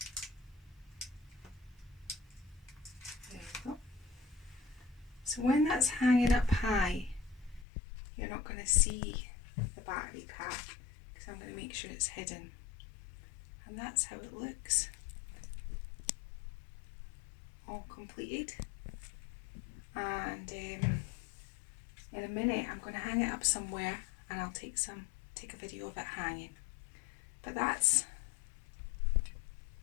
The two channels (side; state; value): right; drops out; at 7.7 s